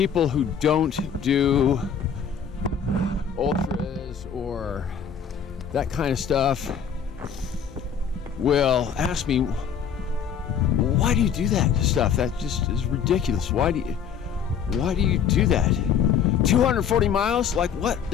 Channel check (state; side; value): quieter; right; 7.4 dB